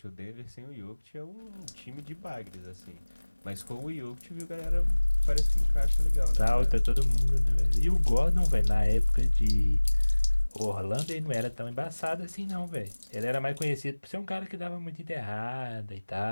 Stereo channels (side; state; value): both; inverted; correlation -1.00